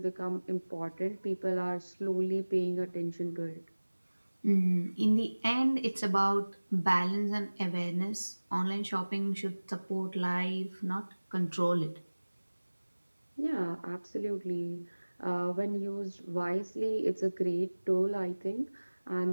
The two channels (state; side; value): inverted; both; correlation -1.00